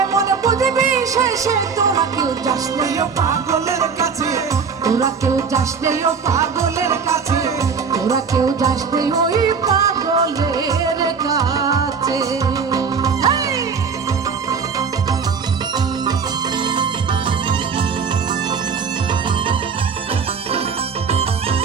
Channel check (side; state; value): left; quieter; 5.8 dB